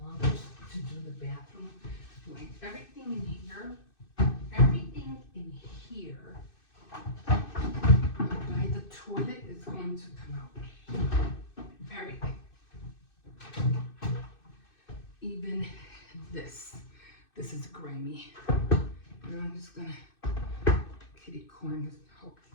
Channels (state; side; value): late; right; 2.6 ms